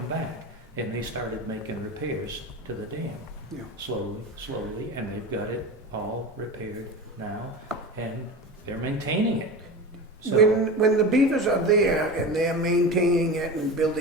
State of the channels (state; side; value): normal; both; correlation 0.28